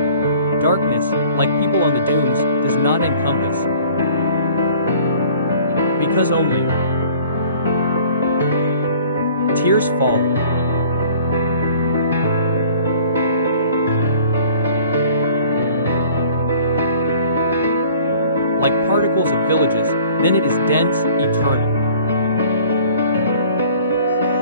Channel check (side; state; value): both; inverted; correlation -0.50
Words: Darkness, like people on the dunes, does not encompass. Because only tears fall. Like particles of villages, then it is dense, eternal.